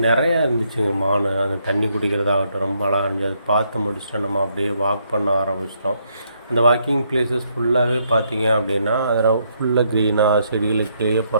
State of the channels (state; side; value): inverted; both; correlation -0.74